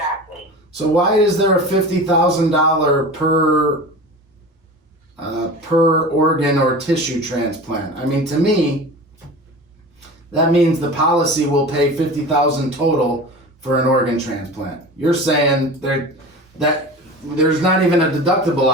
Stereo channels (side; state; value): both; normal; correlation 0.34